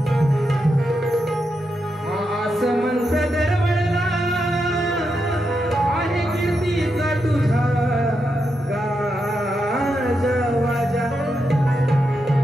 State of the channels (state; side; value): normal; both; correlation 0.85